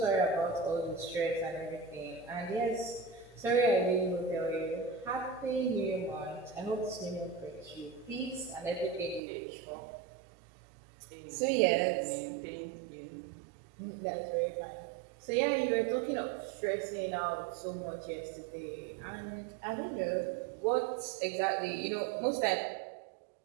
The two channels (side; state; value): left; drops out; at 9.2 s